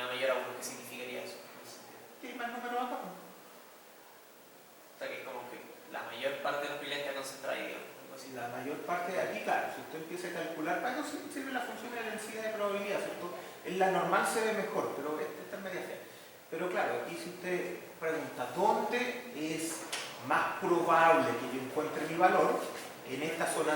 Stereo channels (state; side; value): identical; both; correlation 1.00